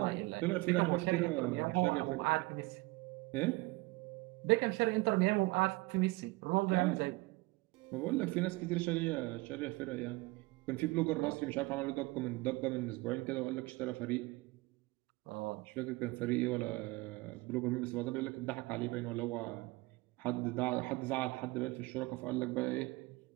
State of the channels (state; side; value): quieter; left; 22.8 dB